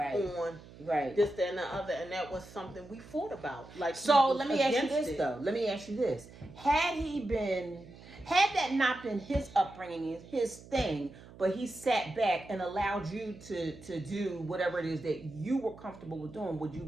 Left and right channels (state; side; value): noise; right; hum, 19 dB below the sound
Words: this, that, and the other? And that was something we fought about. Like, so let me ask you this, though. Let me ask you this. Had that not been his upbringing, his thing, but he sat back and allowed you to do whatever it is that you were comfortable with doing, would you have